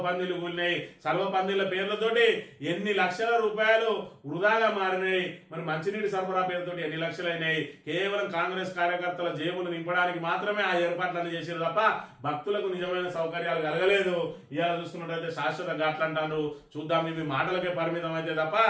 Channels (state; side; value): identical; both; correlation 1.00